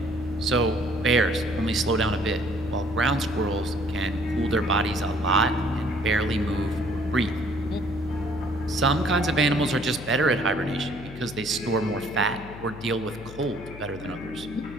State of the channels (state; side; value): noise; left; hum, 13 dB below the sound